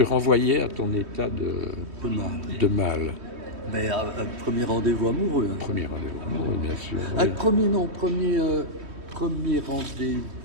renvoyait à ton état de mal? Mais un premier rendez-vous amoureux. Hein. Premier rendez-vous, oui, bien sûr. Ah, Oui. premier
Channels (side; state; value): left; late; 3.2 ms